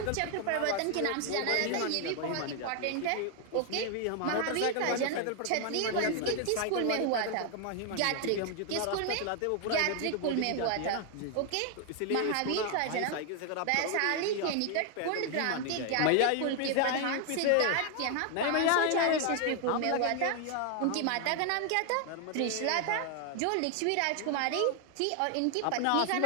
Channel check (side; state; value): both; different; correlation 0.00